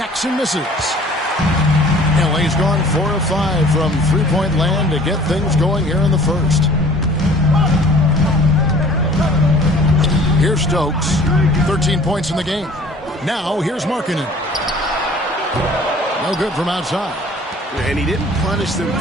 misses. LA's gone 4 of 5 from three-point land to get things going here in the first. Here's Stokes. 13 points in the game. Now here's Markkanen. No good from outside. And he didn't punish them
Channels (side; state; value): both; normal; correlation 0.50